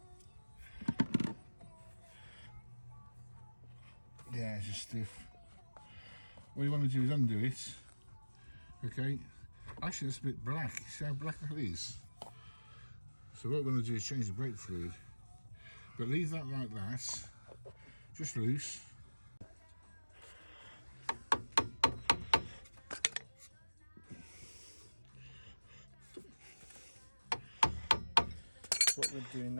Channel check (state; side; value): inverted; both; correlation -1.00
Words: Yeah, it's just stiff. What you want to do is undo it. Okay. Actually, it's a bit black. See how black that is? So what we're going to do is change the brake fluid. But leave that like that. Just loose. What we're doing